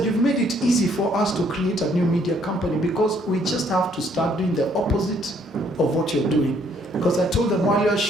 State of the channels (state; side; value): normal; both; correlation 0.66